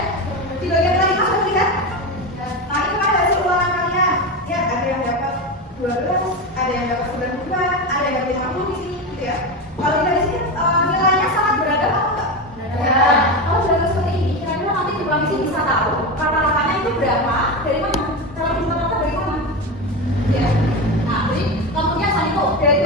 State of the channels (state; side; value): normal; both; correlation 0.19